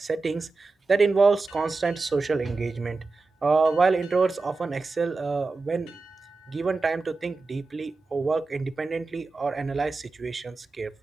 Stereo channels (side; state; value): left; quieter; 3.8 dB